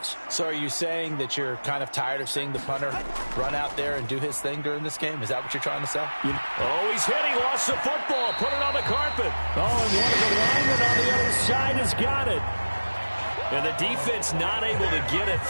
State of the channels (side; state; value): both; inverted; correlation -1.00